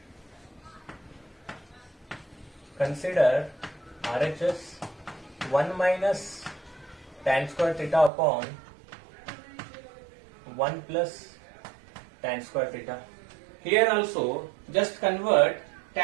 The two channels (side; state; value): left; drops out; at 8.1 s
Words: consider RHS 1 minus tan square theta upon 1 plus tan square theta. Here also just convert